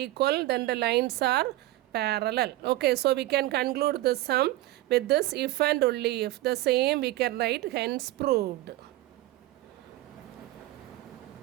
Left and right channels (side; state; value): left; quieter; 16.8 dB